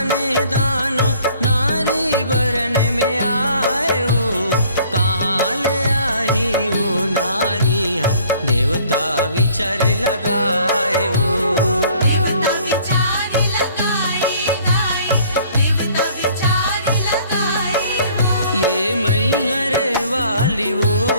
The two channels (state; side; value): inverted; both; correlation -0.56